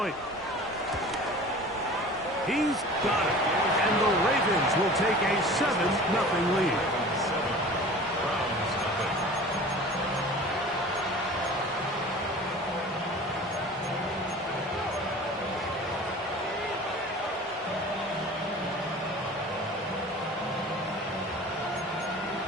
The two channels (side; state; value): both; normal; correlation 0.41